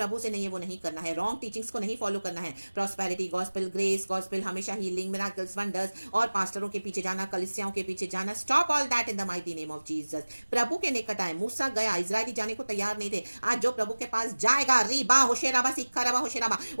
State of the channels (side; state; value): both; inverted; correlation -1.00